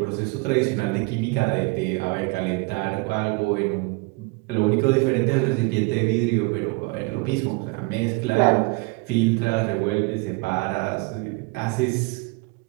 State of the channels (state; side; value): quieter; left; 27.4 dB